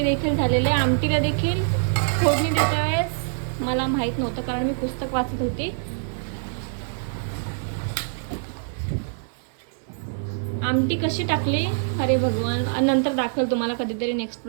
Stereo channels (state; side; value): silent; left; digital silence